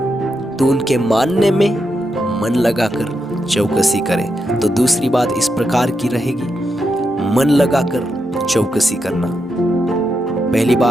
तो उनके मानने में मन लगाकर चौकसी करे। तो दूसरी बात इस प्रकार की रहेगी, मन लगाकर चौकसी करना। पहली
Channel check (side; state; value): both; normal; correlation 0.84